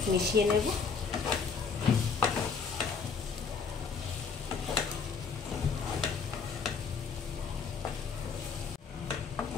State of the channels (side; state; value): right; quieter; 5.5 dB